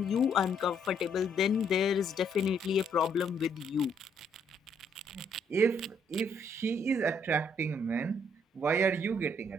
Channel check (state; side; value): normal; both; correlation 0.70